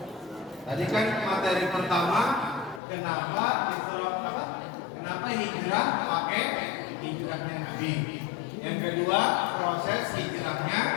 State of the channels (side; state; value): right; drops out; at 2.8 s